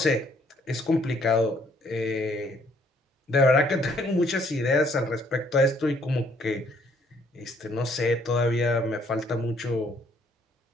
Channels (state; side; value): normal; both; correlation 0.65